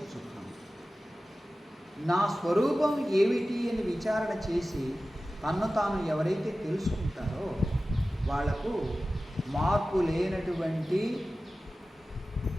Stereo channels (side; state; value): both; normal; correlation 0.96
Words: నా స్వరూపం ఏమిటి అని విచారణ చేసి తన్ను తాను ఎవరైతే తెలుసుకుంటారో వాళ్లకు మార్పు లేనటువంటి,